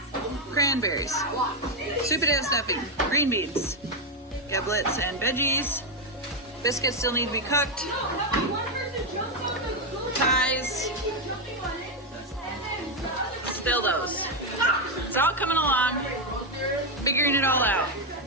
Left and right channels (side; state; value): both; normal; correlation 0.05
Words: cranberries, sweet potato stuffing, green beans, giblets and veggies. Biscuits still need to be cooked. Pies. Still those. It's all coming along. Figuring it all out.